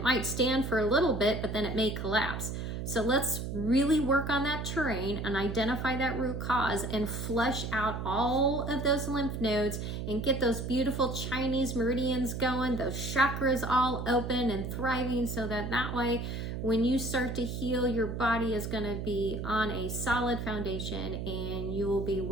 might stand for a little bit, but then it may collapse. So let's really work on that terrain and identify that root cause and flush out all of those lymph nodes and get those beautiful Chinese meridians going, those chakras all open and thriving, so that way when you start to heal, your body is going to be on a solid foundation and you will be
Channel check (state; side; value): noise; right; hum, 5 dB below the sound